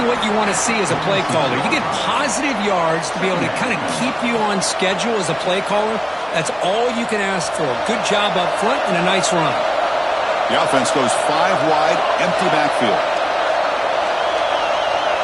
what you want to see as a play caller. You get positive yards to be able to kind of keep you on schedule as a play caller. That's all you can ask for. Good job up front and a nice run. The offense goes 5 wide, empty backfield.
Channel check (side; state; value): both; identical; correlation 1.00